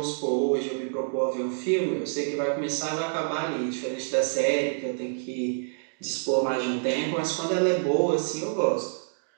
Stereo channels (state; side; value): silent; left; digital silence